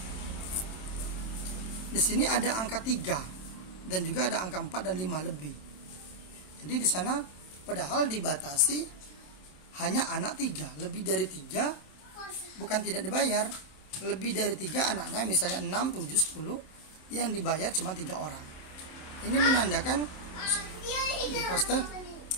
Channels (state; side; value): late; right; 27 ms